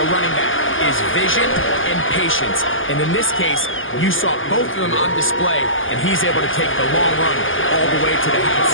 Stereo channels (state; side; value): late; right; 0.58 ms